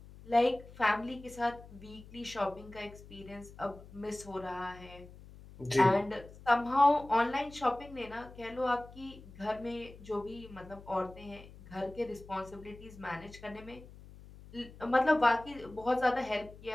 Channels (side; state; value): left; noise; hum, 19 dB below the sound